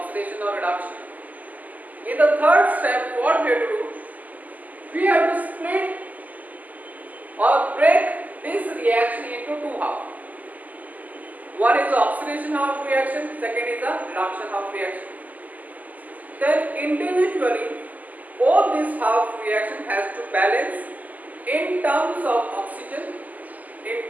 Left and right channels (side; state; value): left; late; 0.080 ms